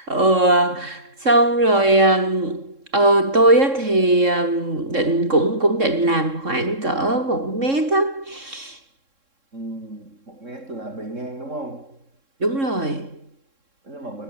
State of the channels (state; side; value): late; left; 3.7 ms